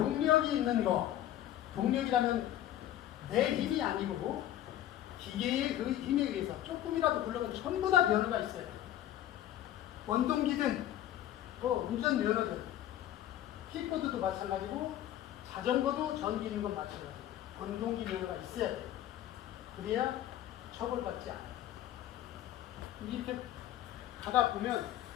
있는 있는 거, 동력이라면 내 힘이 아니고 기계의 그 힘에 의해서 조금이라도 굴러가면 전부 다 면허가 있어요. 원동기든 운전 면허든 킥보드도 마찬가지고 자전거도 전기 있는 건 마찬가지고 원동기 면허가 있어야 돼요. 그래야 처벌받지 않아요. 이렇게 가다 보면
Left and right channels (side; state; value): right; quieter; 12.5 dB